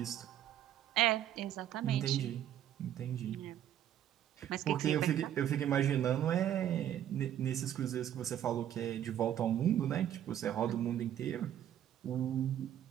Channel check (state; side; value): quieter; left; 11.0 dB